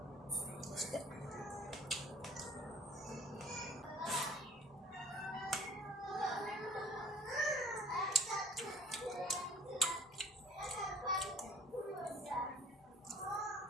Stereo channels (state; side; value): normal; both; correlation 0.50